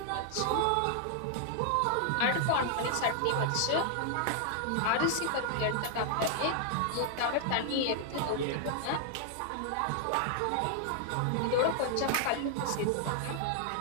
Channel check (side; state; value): both; different; correlation 0.00